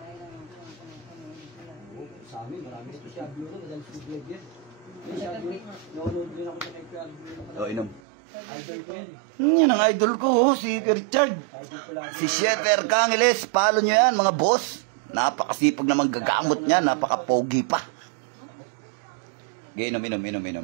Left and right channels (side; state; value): left; drops out; at 8.0 s